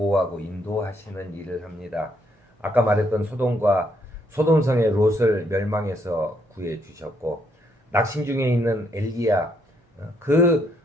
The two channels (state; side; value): normal; both; correlation 0.72